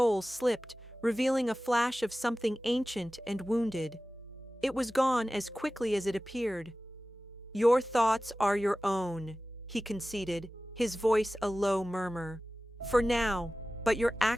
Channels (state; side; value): normal; both; correlation 0.96